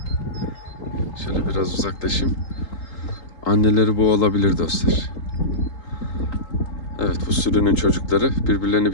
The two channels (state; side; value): late; right; 3.8 ms